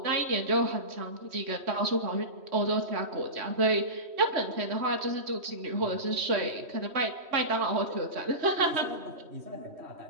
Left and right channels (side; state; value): left; late; 3.1 ms